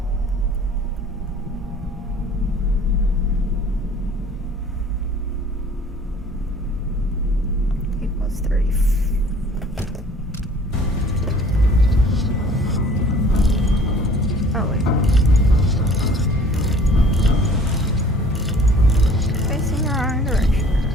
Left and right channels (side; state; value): both; normal; correlation 0.51